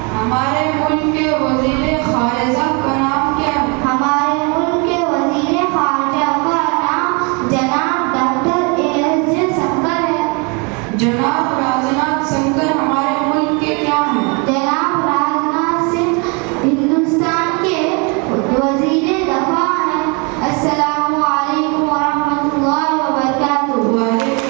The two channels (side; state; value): left; quieter; 32.0 dB